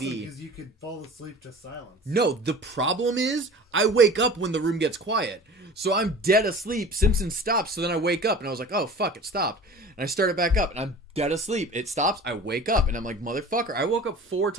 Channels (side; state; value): both; normal; correlation 0.40